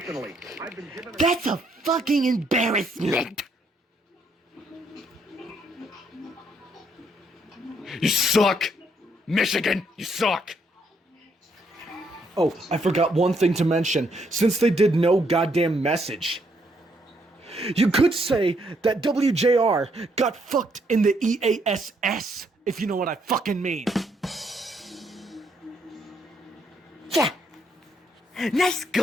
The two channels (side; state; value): both; normal; correlation 0.72